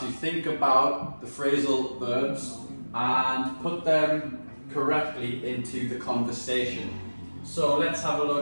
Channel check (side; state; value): both; inverted; correlation -1.00